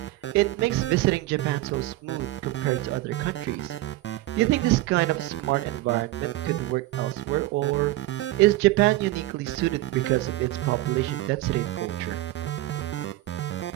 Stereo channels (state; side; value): quieter; left; 17.0 dB